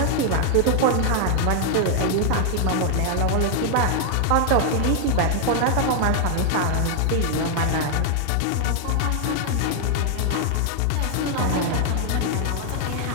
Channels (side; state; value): both; different; correlation 0.00